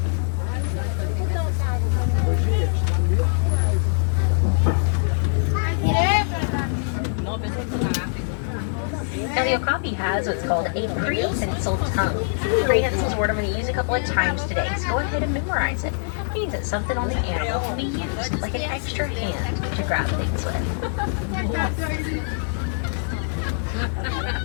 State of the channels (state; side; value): silent; right; digital silence